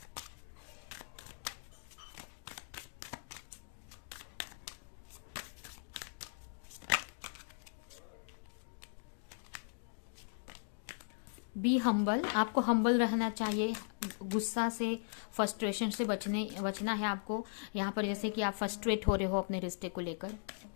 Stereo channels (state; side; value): silent; right; digital silence